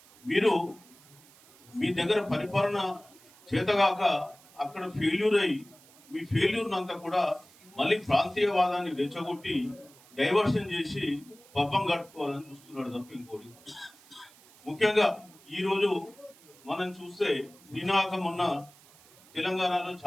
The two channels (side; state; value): right; noise; hiss, 25 dB below the sound